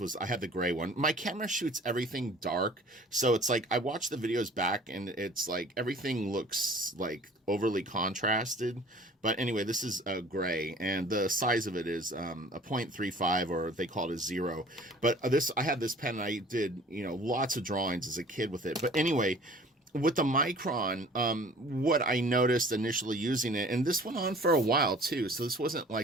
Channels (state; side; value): normal; both; correlation 0.49